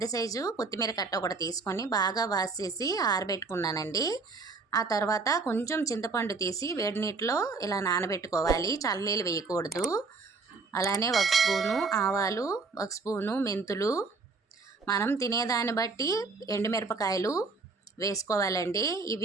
సైజు కొత్తిమీర కట్ట ఒకటి తీసుకొని బాగా వాష్ చేసి ఆరబెట్టుకున్నానండి. ఆ తర్వాత కొంచెం చింతపండు తీసి వేడి నీటిలో ఇలా నానబెట్టుకోవాలి, చల్లనీళ్ళు వేయకూడదు. అలానే 1 స్పూను ఆవాలు, 1 స్పూను మెంతులు, మనం తినేదాన్ని బట్టి ఎండుమిరపకాయలు వేసుకోవాలండి.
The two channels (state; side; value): quieter; left; 4.1 dB